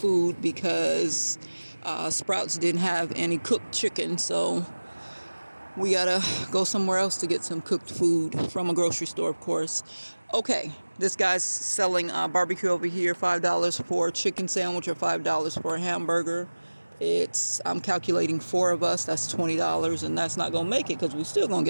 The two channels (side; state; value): both; inverted; correlation -1.00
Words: because Sprouts didn't have any cooked chicken. So we gotta go somewhere else to get some cooked food from a grocery store, of course. Okay, this guy's selling barbecue over here, $5 for a chicken sandwich or $5 for a hamburger. I'm calculating four of us, that's $20, and that's not gonna make it because we're still gonna